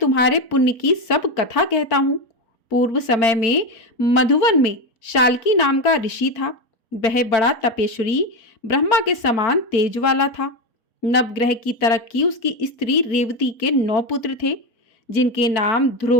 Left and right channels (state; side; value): late; right; 4.5 ms